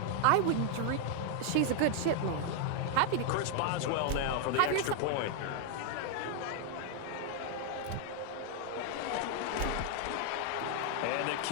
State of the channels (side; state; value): both; different; correlation 0.00